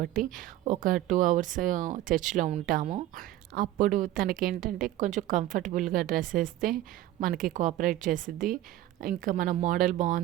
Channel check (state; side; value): quieter; left; 14.2 dB